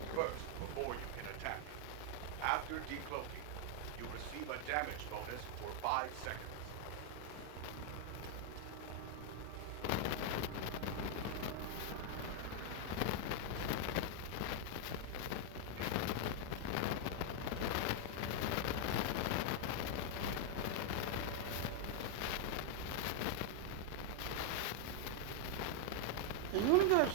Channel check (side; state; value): both; different; correlation 0.00